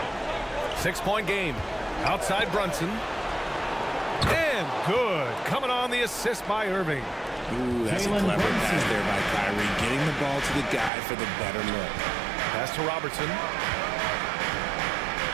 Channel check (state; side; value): drops out; left; at 10.9 s